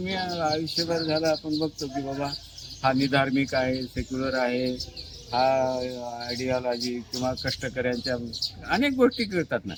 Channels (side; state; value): both; identical; correlation 1.00